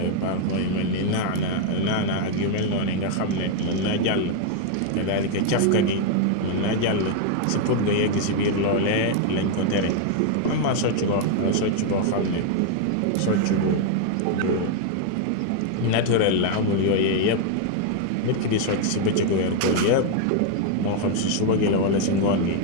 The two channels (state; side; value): different; both; correlation 0.00